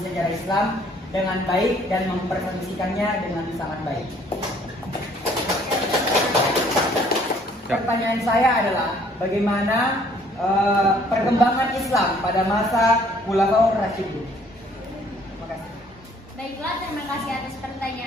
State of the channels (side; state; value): both; normal; correlation 0.60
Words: Islam dengan baik dan mempresentasikannya dengan sangat baik. Pertanyaan saya adalah bagaimana perkembangan Islam pada masa Khulafaur Rasyidin? Terima kasih. Baiklah, terima kasih atas